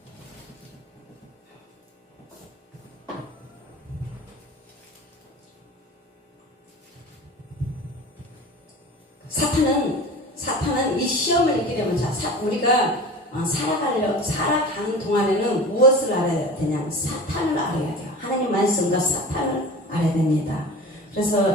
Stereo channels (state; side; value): normal; both; correlation 0.36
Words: 사탄은 이 시험을 이기려면 우리가 살아가는 동안에는 무엇을 알아야 되냐? 사탄을 알아야 돼요. 하나님 말씀과 사탄을 알아야 됩니다.